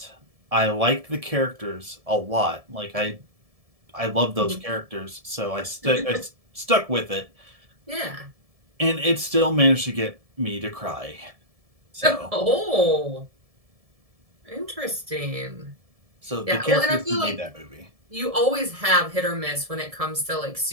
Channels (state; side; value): late; left; 1.7 ms